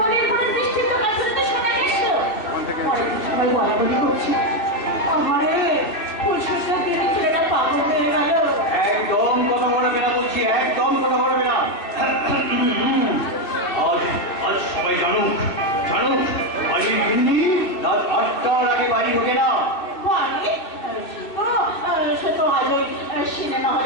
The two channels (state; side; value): late; right; 2.6 ms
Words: ঘরে বৃষ্টির তো কাছাতে শোনা গেছিল। পরে সবাই বলাবলি করছে। আমারে পরিষ্কার দিয়ে ছেলেটা পাগল হয়ে গেল। একদম কথা বলবে না বলছি, একদম কথা বলবে না। আজ সবাই জানুক, বাড়ির গিন্নি রাত 8টার আগে বাড়ি ঢোকে না। বাড়ি? সে তো আজ ওই সিনেমা